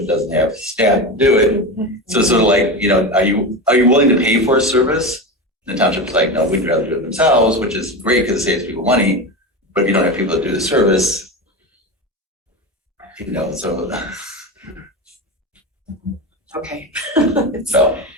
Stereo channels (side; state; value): both; normal; correlation 0.22